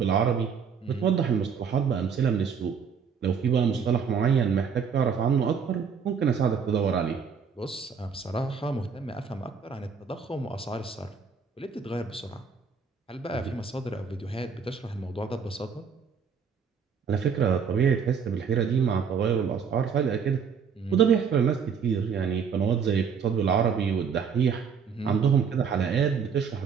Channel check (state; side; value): quieter; left; 6.4 dB